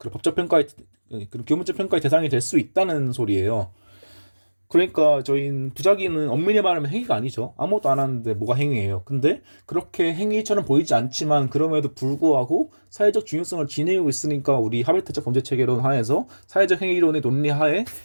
법적 평가의 그 교문적 평가의 대상이 될 수 있다는 소리예요. 그러니까 저희는 부작위는 엄밀히 말하면 행위가 아니죠. 아무것도 안 하는데 뭐가 행위예요. 근데 그렇게 행위처럼 보이지 않지만 그럼에도 불구하고 사회적 중요성을 지니고 있으니까 우리 하벨트적 범죄 체계론 하에서 사회적 행위론의 논리 하에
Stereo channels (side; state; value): both; inverted; correlation -1.00